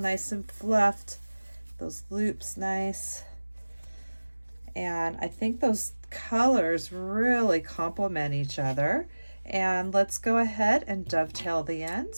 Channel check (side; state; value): both; inverted; correlation -1.00